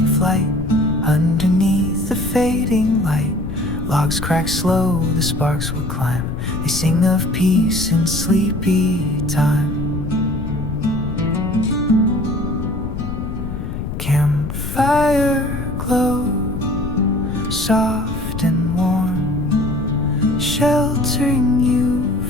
flight underneath the fading light. Logs crack slow, the sparks will climb. They sing of peace in sleepy time. Campfire glow, soft and warm, sheltering you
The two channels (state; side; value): noise; left; rumble, 6 dB below the sound